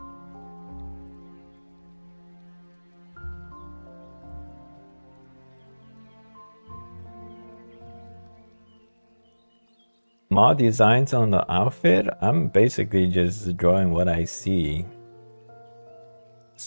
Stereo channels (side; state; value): both; inverted; correlation -1.00